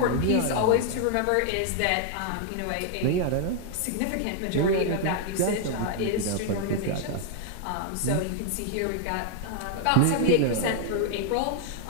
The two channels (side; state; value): both; different; correlation 0.00